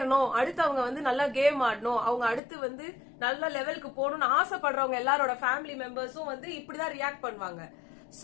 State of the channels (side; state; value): right; drops out; at 2.4 s